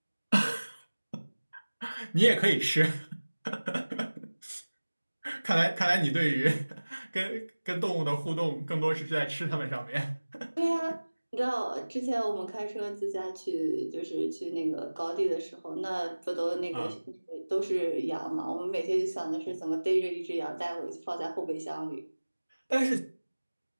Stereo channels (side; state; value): both; inverted; correlation -1.00